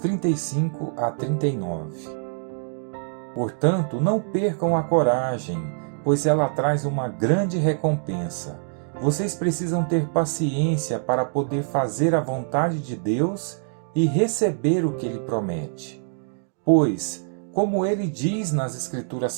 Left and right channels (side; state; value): left; silent; digital silence